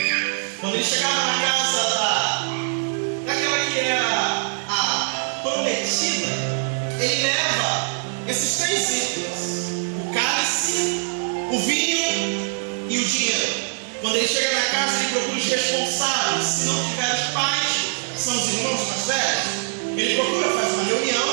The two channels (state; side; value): silent; left; 64 dB below the other